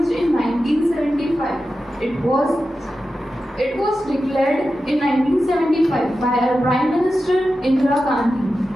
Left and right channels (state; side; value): normal; both; correlation 0.92